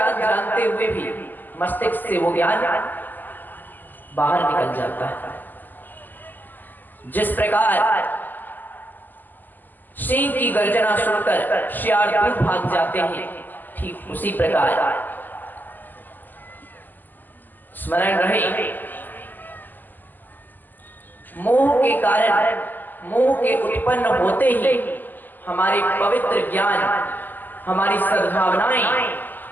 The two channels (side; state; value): right; late; 0.087 ms